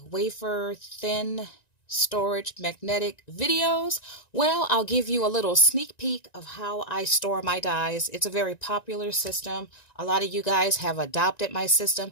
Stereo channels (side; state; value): right; late; 1.9 ms